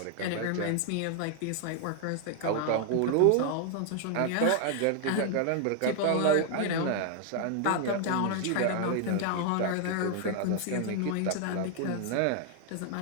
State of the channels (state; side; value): different; both; correlation 0.00